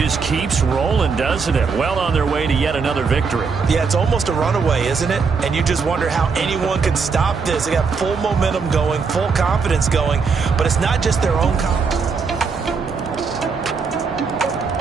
keeps rolling, doesn't it? Well on their way to yet another victory. Yeah, it's almost a runaway, isn't it? And you just wonder how anyone could stop this. They got full momentum going, full confidence going. But it's not just their own confidence.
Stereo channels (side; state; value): left; quieter; 5.2 dB